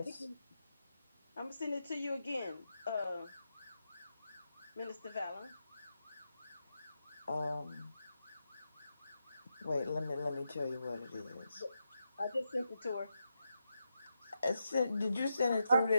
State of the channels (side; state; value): both; inverted; correlation -0.86